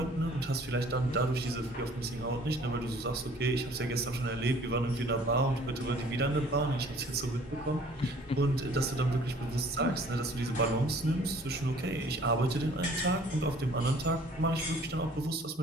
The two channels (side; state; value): both; normal; correlation 0.53